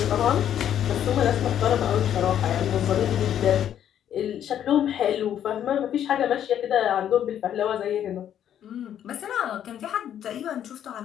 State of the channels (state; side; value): quieter; right; 10.1 dB